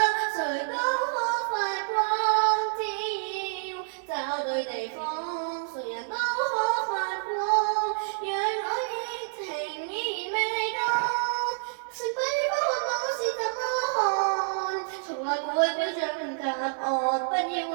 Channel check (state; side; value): silent; left; digital silence